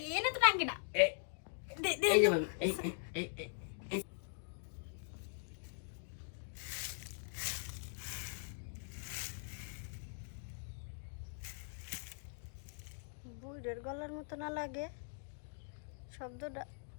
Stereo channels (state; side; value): silent; right; digital silence